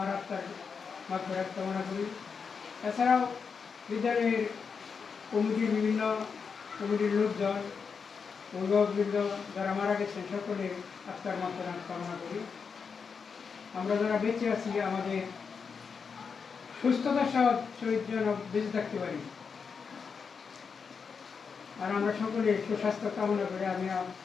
আত্মার মাগফিরাত কামনা করি। এছাড়াও বিদ্যালয়ের কমিটির বিভিন্ন কমিটির লোকজন, অভিভাবকবৃন্দ যারা মারা গেছেন সকলের আত্মার মাগফিরাত কামনা করি। আমরা যারা বেঁচে আছি আমাদের সুস্থতার সহিত যেন বেঁচে থাকতে পারি, আর আমরা সকলে সুস্বাস্থ্য কামনা করে আমি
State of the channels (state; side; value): quieter; right; 5.7 dB